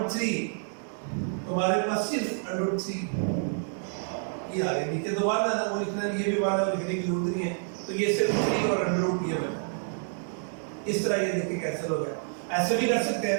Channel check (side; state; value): left; silent; 59 dB below the other